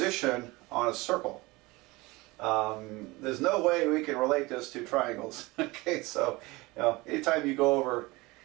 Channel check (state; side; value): quieter; left; 22.4 dB